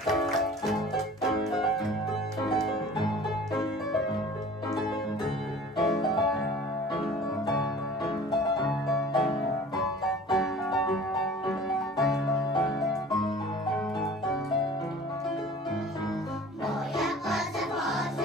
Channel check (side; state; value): both; normal; correlation 0.45